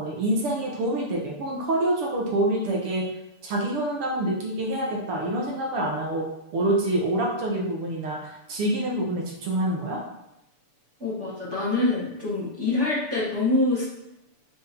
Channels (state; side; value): late; left; 6.9 ms